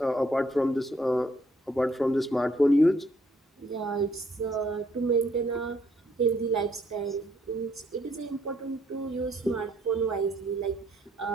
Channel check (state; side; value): normal; both; correlation 0.68